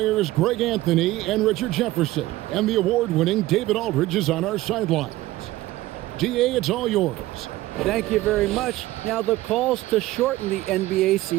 Greg Anthony and Richard Jefferson. And the award-winning David Aldridge is on our sidelines. DA, it's all yours. Thank you very much. Now the calls to shorten the NBA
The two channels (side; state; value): left; quieter; 17.0 dB